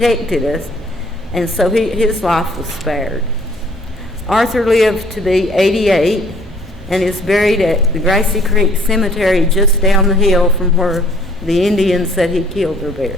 us. And so his life was spared. Arthur lived to be 88 and is buried at the Grassy Creek Cemetery just down the hill from where the Indians that he killed are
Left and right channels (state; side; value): normal; both; correlation 0.58